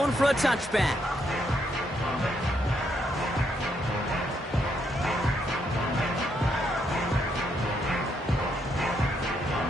for a touchback.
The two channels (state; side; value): normal; both; correlation 0.76